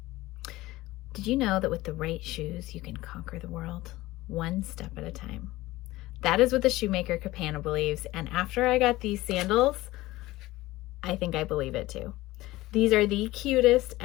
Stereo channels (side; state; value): right; quieter; 18.2 dB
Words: Did you know that with the right shoes, you can conquer the world one step at a time? That is what the shoemaker Capana believes, and after I got these sandals, I think I believe it too. These are the cutest